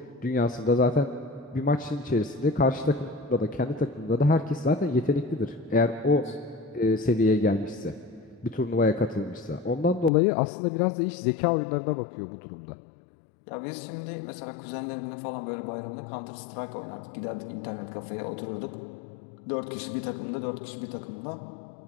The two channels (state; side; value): drops out; right; at 10.1 s